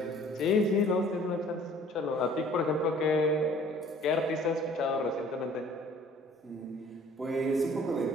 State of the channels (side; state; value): both; normal; correlation 0.52